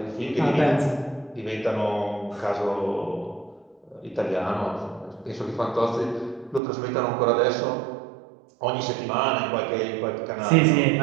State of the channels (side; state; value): left; drops out; at 6.6 s